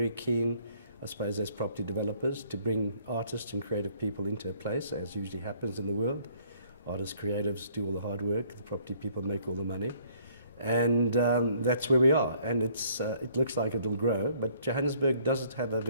keen, I suppose, as property developers, to bring artists and creative people into a place, as usually happens in the world. Artists, creatives do all the hard work, the property people make all the money. And that's where we are. And it looks like it'll grow, but Johannesburg does have a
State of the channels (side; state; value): both; inverted; correlation -0.62